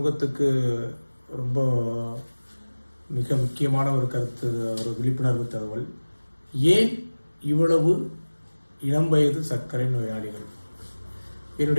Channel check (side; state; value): both; inverted; correlation -1.00